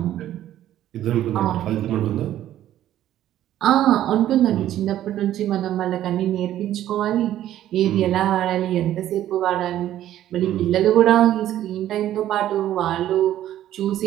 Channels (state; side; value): quieter; left; 12.4 dB